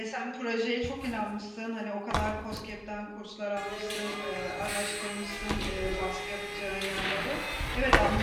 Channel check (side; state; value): both; identical; correlation 1.00